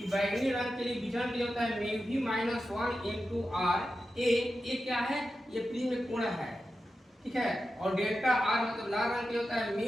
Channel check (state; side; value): normal; both; correlation 0.91